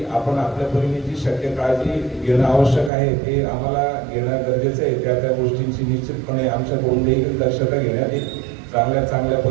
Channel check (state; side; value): drops out; left; at 2.9 s